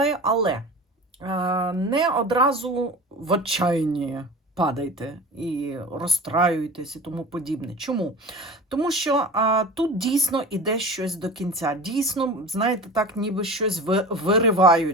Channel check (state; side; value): normal; both; correlation 0.34